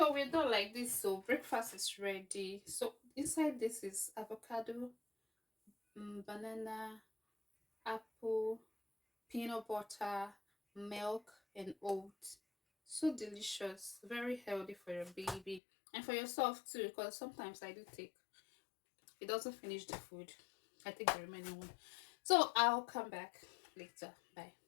we're done like this. So breakfast is ready. So inside this is avocado, banana, apple, peanut butter, milk, and oats. So delicious, very healthy for your baby and for yourself too. Because sometimes I do take it doesn't finish the food. I take the remaining one. So I'll come back later. Bye.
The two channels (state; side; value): drops out; right; at 15.6 s